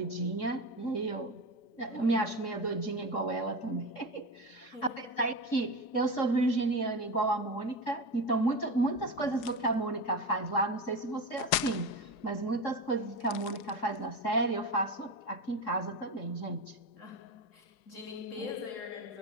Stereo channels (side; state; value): right; late; 5.0 ms